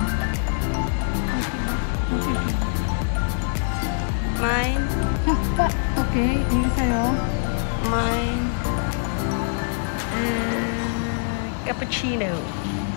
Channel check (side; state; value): right; silent; 58 dB below the other